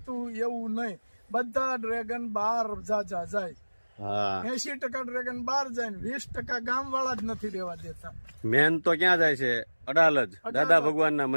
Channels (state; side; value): inverted; both; correlation -1.00